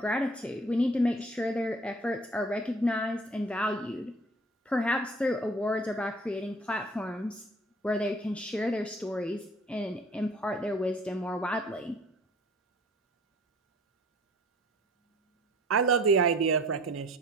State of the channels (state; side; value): normal; both; correlation 0.51